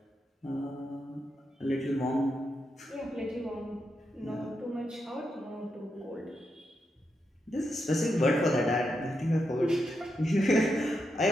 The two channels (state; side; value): normal; both; correlation 0.84